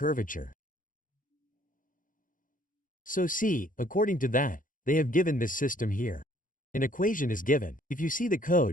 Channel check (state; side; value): late; right; 0.39 ms